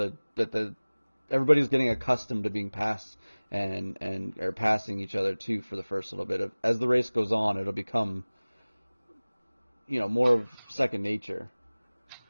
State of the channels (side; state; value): both; inverted; correlation -1.00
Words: everybody's getting accustomed to being passed and are passing each other too for the first little bit. As the race goes on, it'll become more of second nature.